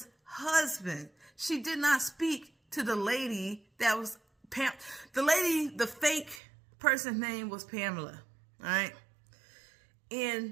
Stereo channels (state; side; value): drops out; left; at 6.4 s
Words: husband. She did not speak to the lady that was the fake person's name was Pamela, all right?